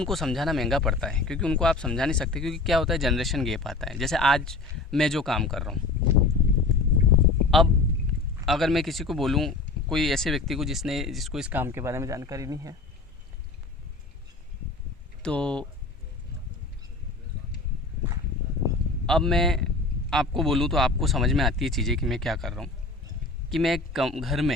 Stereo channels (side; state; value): right; quieter; 3.5 dB